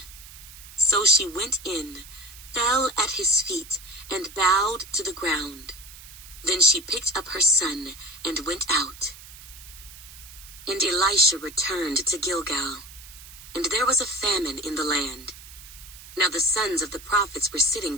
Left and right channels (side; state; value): right; noise; hiss, 17 dB below the sound